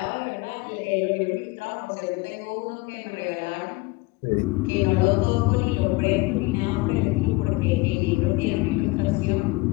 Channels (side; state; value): right; quieter; 22.8 dB